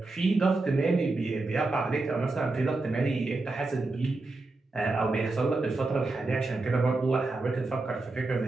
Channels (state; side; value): quieter; left; 3.3 dB